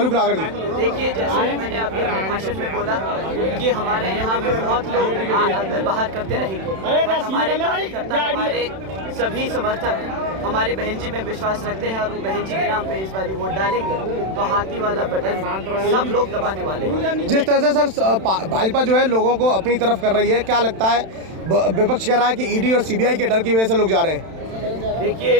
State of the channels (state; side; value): late; left; 31 ms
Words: नागर जी? देखिए, जैसे मैंने अभी अपने भाषण में बोला कि हमारे यहाँ पे बहुत लोग अंदर बाहर करते रहेंगे, बट हमारे कार्यकर्ता, हमारे सभी समर्थक हमारी बहन जी में विश्वास रखते हैं, और वो बहन जी के नाम पे इस बार वोट डालेंगे तो हाथी वाला बटन सब लोग दबाने वाले हैं। जिस तरह से सर भाजपा जो है लोगों को अपनी तरफ कर रही है, क्या लगता है? विपक्ष कह रहा है कि ईडी और सीबीआई के डर की वजह से लोग जा रहे हैं। देखिए,